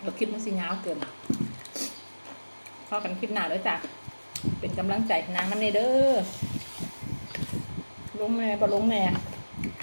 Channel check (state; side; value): inverted; both; correlation -1.00